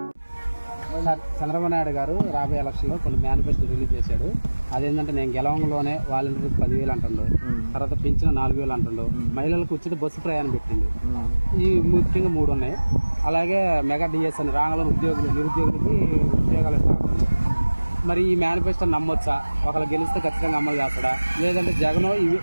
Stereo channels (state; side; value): inverted; both; correlation -1.00